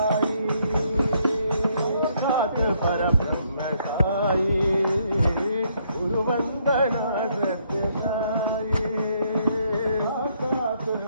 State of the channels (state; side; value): inverted; both; correlation -0.71